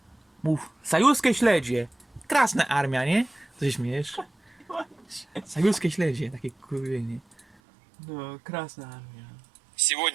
Mów. Sajuskie śledzie! Krasna Armia, nie? Co się śmiejesz? Sajuskie śledzie, takie kurwienie. No, Krasna Armia.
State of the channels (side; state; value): left; drops out; at 7.5 s